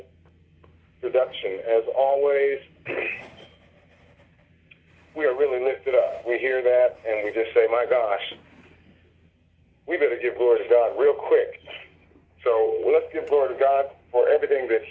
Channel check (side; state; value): both; identical; correlation 1.00